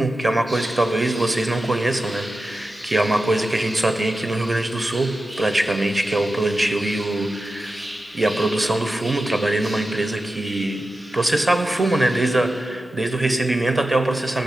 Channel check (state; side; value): normal; both; correlation 0.92